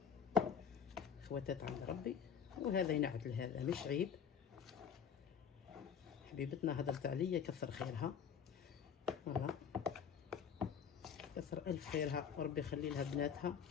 خواتات عند ربي. وهذا ينعت لهذا مش عيب. حبيبتنا هدرت عليا كثر خيرها، فوالا كثر الف خيرها، وربي يخلي لها بناتها،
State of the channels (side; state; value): right; quieter; 7.5 dB